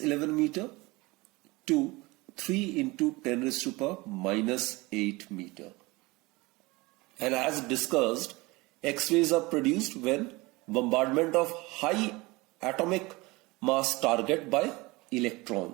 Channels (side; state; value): left; quieter; 23.0 dB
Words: meter to 3 into 10 raised to power minus 8 meter. And as discussed, X-rays are produced when bombardment of high atomic mass target by